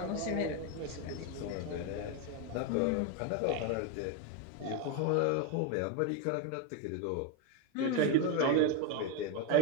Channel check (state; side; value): different; both; correlation 0.02